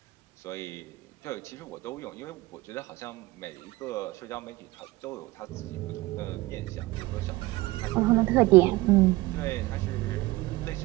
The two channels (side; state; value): left; quieter; 19.9 dB